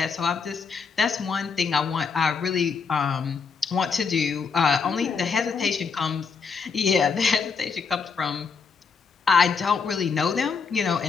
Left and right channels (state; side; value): quieter; right; 5.6 dB